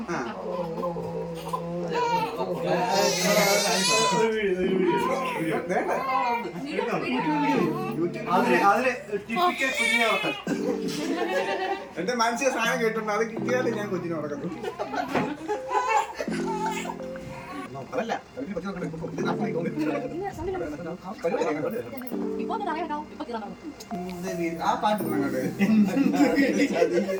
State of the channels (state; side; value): identical; both; correlation 1.00